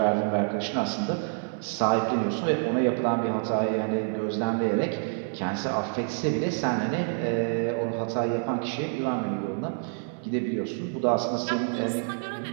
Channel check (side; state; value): left; silent; 60 dB below the other